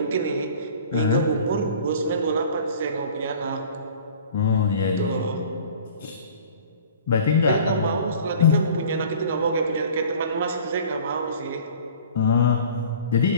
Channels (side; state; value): both; inverted; correlation -0.45